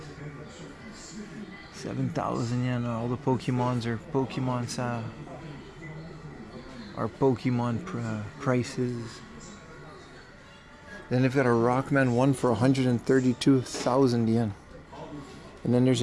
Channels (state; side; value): identical; both; correlation 1.00